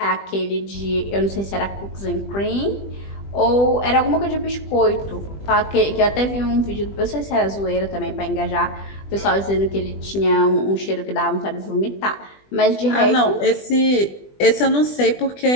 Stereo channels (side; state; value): right; late; 20 ms